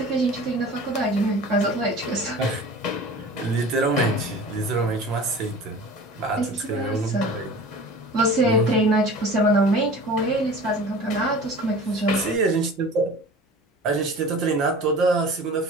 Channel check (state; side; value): normal; both; correlation 0.40